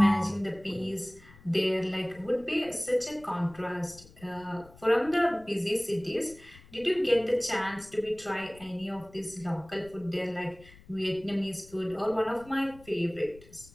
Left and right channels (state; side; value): noise; left; rumble, 23 dB below the sound